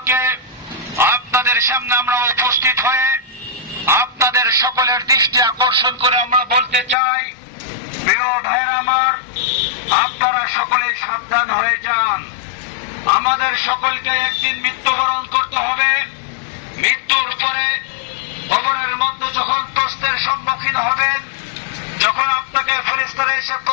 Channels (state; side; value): drops out; right; at 7.0 s